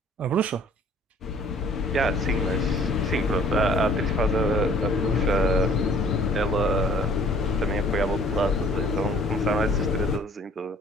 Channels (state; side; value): normal; both; correlation 0.55